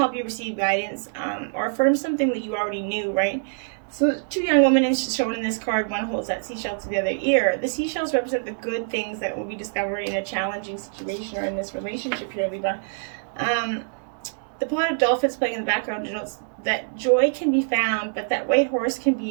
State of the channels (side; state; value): left; silent; digital silence